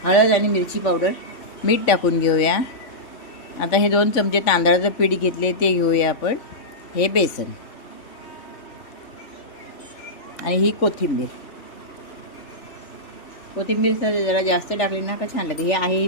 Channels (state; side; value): late; right; 3.5 ms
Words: हळद आणि मिरची पावडर, मीठ टाकून घेऊया. आता हे 2 चमचे तांदळाचं पीठ घेतले ते घेऊया आपण. हे बेसन आणि ही कोथिंबीर जरा जास्त टाकली ना का छान लागते. हे आहे